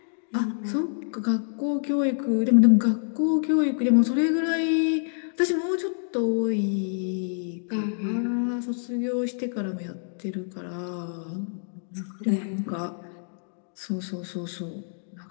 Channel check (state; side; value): silent; right; digital silence